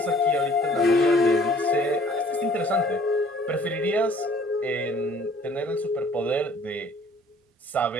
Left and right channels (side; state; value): both; normal; correlation 0.56